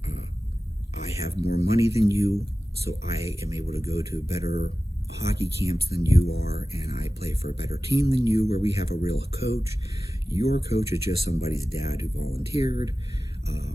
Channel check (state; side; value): normal; both; correlation 0.95